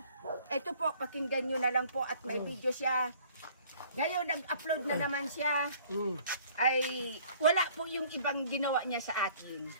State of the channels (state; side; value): inverted; both; correlation -0.55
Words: Ito po, pakinggan nyo na lang po at may video siya. Ngayon, nag-upload na naman siya. Ay, wala po yung ibang ginawa niya sa atin.